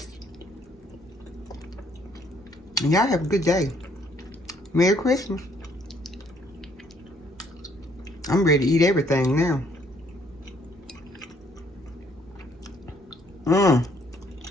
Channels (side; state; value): both; normal; correlation 0.66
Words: And y'all have a good day. Merry Christmas. I'm ready to eat everything now.